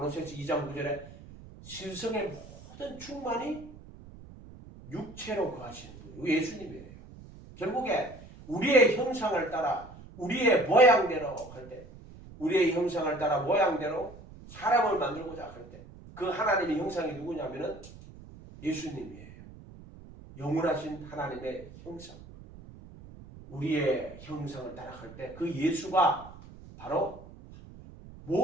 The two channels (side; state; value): right; noise; rumble, 18 dB below the sound